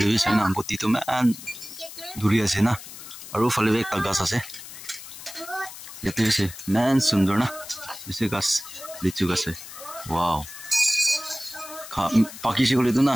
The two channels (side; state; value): left; noise; hiss, 14 dB below the sound